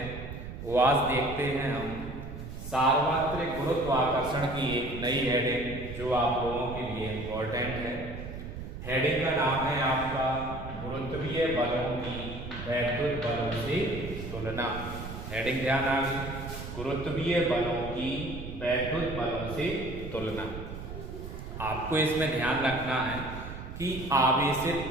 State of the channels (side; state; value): right; noise; rumble, 9 dB below the sound